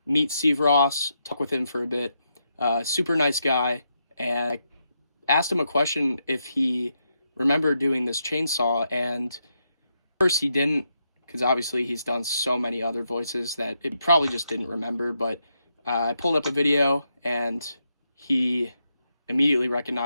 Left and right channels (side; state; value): both; inverted; correlation -0.82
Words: meet Steve Ross, talk with him for a bit. Super nice guy. And I asked him a question if he remembered doing this chainsaw, and first he didn't, because obviously he's done so many other voices that it probably just didn't remember. But I pulled up a video, and he immediately